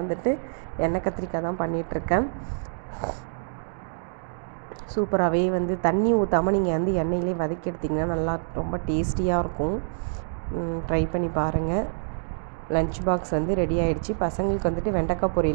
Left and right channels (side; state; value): left; silent; digital silence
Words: வந்துட்டு எண்ணெய் கத்திரிக்காய் தான் பண்ணிகிட்ருக்கேன். சூப்பராகவே வந்து தண்ணி ஊற்றாமல் நீங்கள் வந்து எண்ணெயிலே வதக்கி எடுத்திங்கன்னா நல்லா ரொம்ப டேஸ்டியாக இருக்கும். ட்ரை பண்ணி பாருங்கள். லன்ச் பாக்ஸ் வந்து ரெடி ஆகிடுச்சு. பசங்களுக்கு வந்துட்டு வெண்டைக்காய்